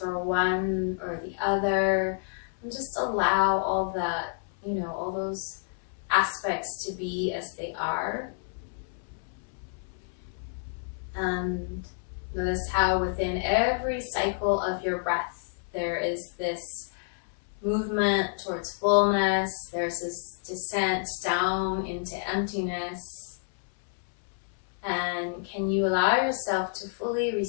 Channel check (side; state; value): right; silent; 59 dB below the other